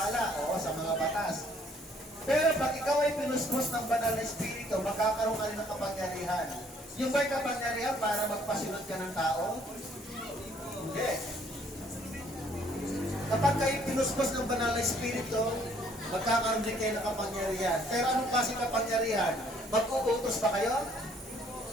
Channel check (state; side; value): normal; both; correlation 0.62